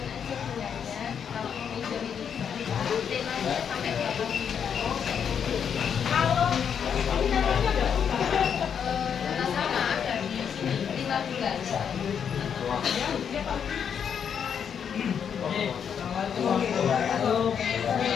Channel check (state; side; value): quieter; right; 7.6 dB